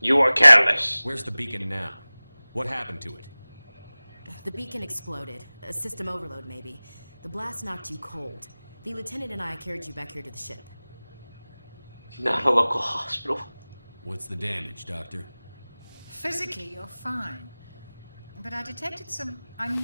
You were careless. Where's the beacon now? What happened to it? The beacon exploded. A system overload, maybe. The blast knocked you cold. The lieutenant and I carried you back here to the ship. Not a local hospital. What's the damage, Doctor? Physically, you're fine. But I detected some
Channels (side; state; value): both; inverted; correlation -0.99